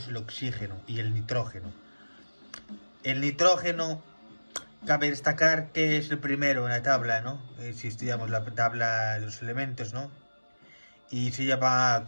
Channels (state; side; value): inverted; both; correlation -1.00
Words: el oxígeno y el nitrógeno. El nitrógeno, cabe destacar que es el primero en la tabla, ¿no? Si estudiamos la tabla de los elementos, ¿no? Y se lleva